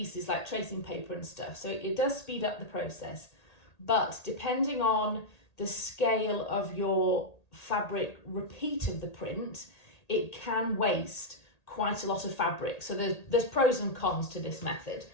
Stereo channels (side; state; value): right; late; 1.8 ms